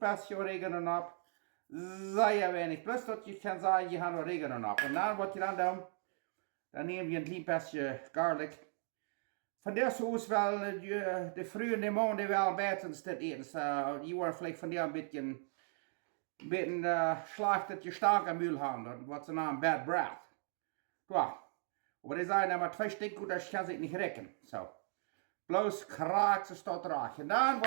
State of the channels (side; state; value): left; silent; 53 dB below the other